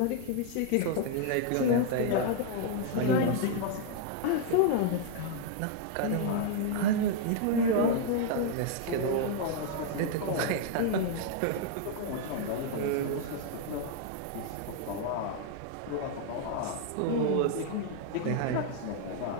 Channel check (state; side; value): different; both; correlation 0.00